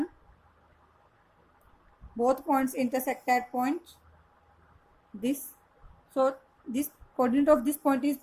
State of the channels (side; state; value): both; identical; correlation 1.00